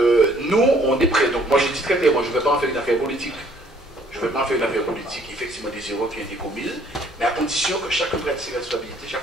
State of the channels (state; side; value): normal; both; correlation 0.61